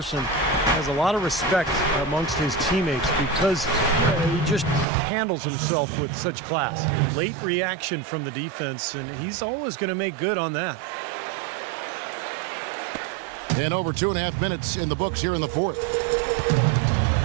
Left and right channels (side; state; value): left; drops out; at 4.9 s